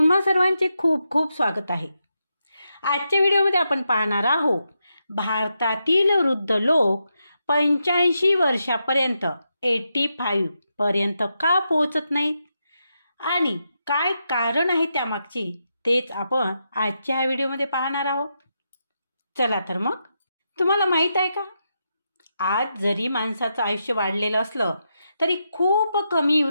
सर्वांचे खूप खूप स्वागत आहे. आजच्या व्हिडिओमध्ये आपण पाहणार आहोत भारतातील वृद्ध लोक 85 वर्षापर्यंत 85 पर्यंत का पोहोचत नाहीत आणि काय कारण आहे त्यामागची, तेच आपण आजच्या व्हिडिओमध्ये पाहणार आहोत. चला तर मग, तुम्हाला माहीत आहे का, आज जरी माणसाचं आयुष्य वाढलेलं असलं तरी खूप कमी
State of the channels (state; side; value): inverted; both; correlation -0.84